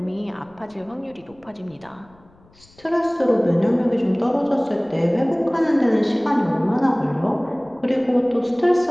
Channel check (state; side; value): noise; left; rumble, 29 dB below the sound